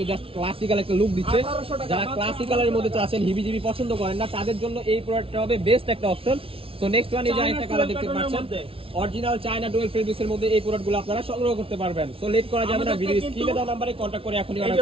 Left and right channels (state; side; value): late; left; 0.26 ms